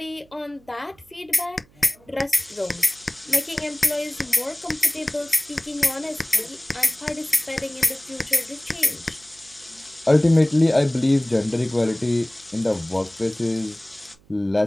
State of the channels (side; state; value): right; noise; hum, 29 dB below the sound